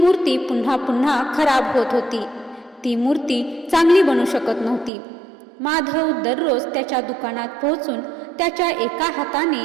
पुन्हा पुन्हा खराब होत होती. ती मूर्ती चांगली बनू शकत नव्हती. माधव दररोज त्याच्या दुकानात पोहोचून त्याच्या एका हाताने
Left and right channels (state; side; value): drops out; left; at 4.9 s